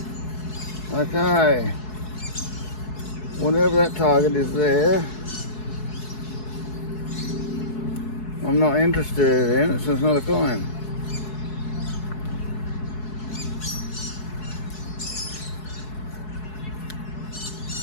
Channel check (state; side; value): late; right; 4.7 ms